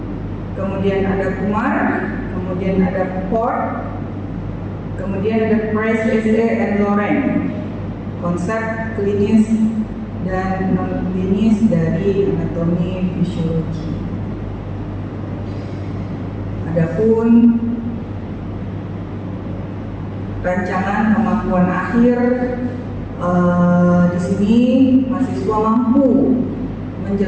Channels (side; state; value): both; identical; correlation 1.00